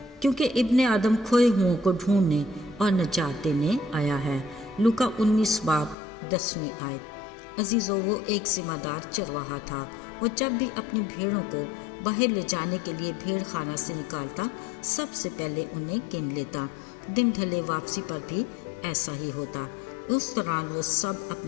क्योंकि इब्ने आदम खोए हुओं को ढूंढने और नजात देने आया है। लूका 19 बाब 10वीं आयत। अजीज़ो, वो एक जिम्मेदार चरवाहा था। वो जब भी अपनी भेड़ों को बाहर ले जाने के लिए भेड़ खाना से निकालता, सबसे पहले उन्हें गिन लेता। दिन ढले वापसी पर भी ऐसा ही होता। उस दौरान वो सब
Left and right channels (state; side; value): drops out; right; at 6.0 s